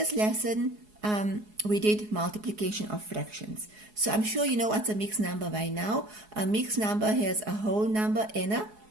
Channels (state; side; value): late; left; 4.7 ms